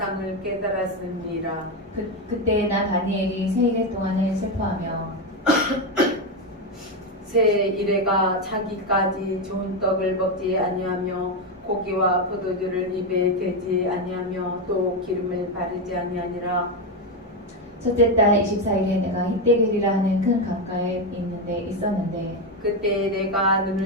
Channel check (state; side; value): normal; both; correlation 0.09